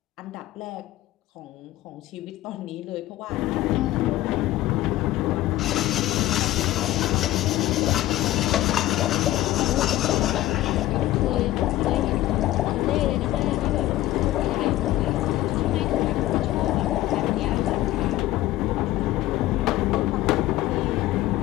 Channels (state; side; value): quieter; right; 15.6 dB